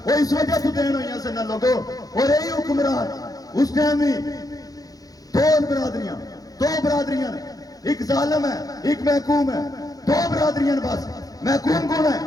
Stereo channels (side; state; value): right; late; 0.18 ms